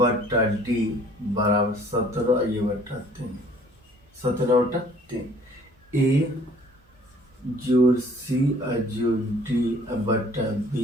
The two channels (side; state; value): both; normal; correlation 0.55